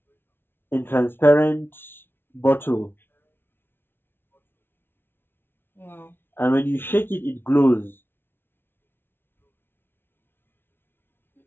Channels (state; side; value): late; right; 0.11 ms